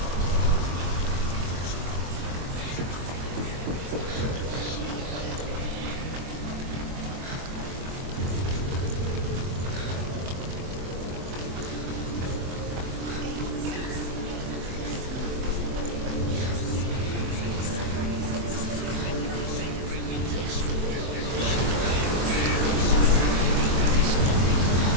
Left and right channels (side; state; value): left; late; 23 ms